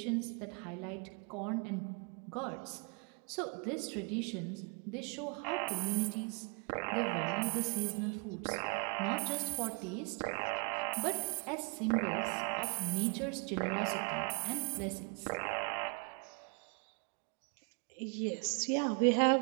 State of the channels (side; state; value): left; quieter; 36.9 dB